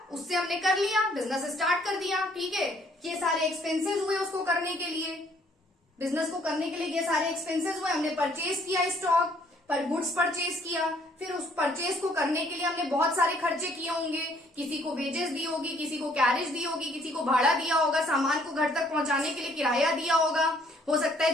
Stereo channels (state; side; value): normal; both; correlation 0.63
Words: उससे हमने कर लिया, बिजनेस स्टार्ट कर दिया, ठीक है। ये सारे एक्सपेंसेस हुए उसको करने के लिए, बिजनेस को करने के लिए ये सारे एक्सपेंसेस हुए। हमने परचेज किया स्टॉक पर, गुड्स परचेज किया, फिर उस परचेज को करने के लिए हमने बहुत सारे खर्चे किए होंगे। किसी को वेजेस दी होगी, किसी को कैरेज दी होगी, किसी को भाड़ा दिया होगा, सामान को घर तक पहुंचाने के लिए किराया दिया होगा। हो सकता